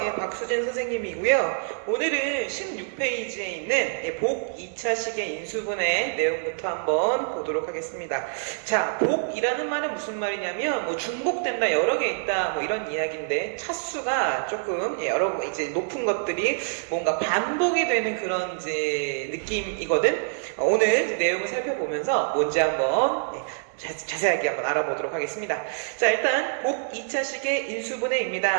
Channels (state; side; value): silent; left; digital silence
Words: 예, 박수진 선생님이고요. 오늘은 16페이지에 있는 복 2차식의 인수분해 내용부터 한번 보도록 하겠습니다. 자, 복이라는 말은 무슨 말이냐면, 뭐 중복된다, 여러 개 있다, 뭐 이런 이야기인데, 차수가 조금 여러 이제 높은 것들이 뭔가 반복이 되는 그런 이제 느낌이거든. 오늘 내용을 살펴보면서 뭔지 한번 자세하게 한번 알아보도록 하겠습니다. 자, 일단 복 2차식의